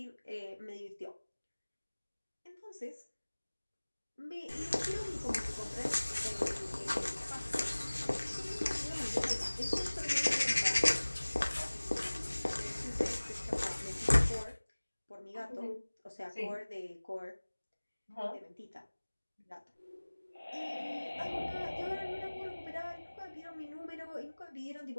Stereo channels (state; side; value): inverted; both; correlation -1.00